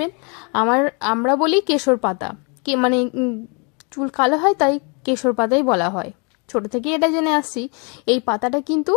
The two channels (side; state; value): right; quieter; 34.2 dB